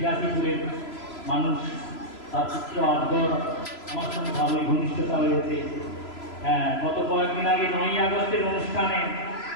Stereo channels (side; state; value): right; late; 3.0 ms